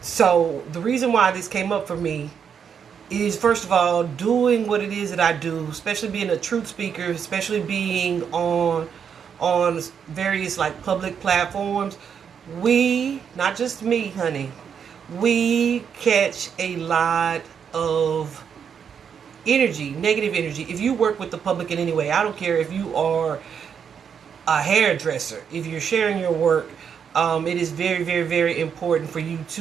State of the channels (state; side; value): quieter; left; 7.3 dB